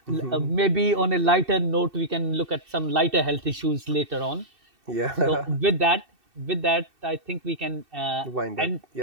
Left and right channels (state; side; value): late; left; 2.6 ms